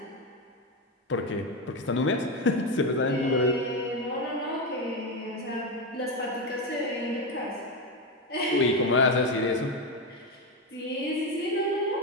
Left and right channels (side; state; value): both; normal; correlation 0.12